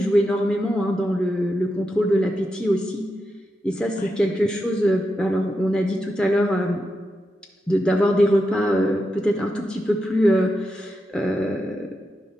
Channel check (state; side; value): normal; both; correlation 0.87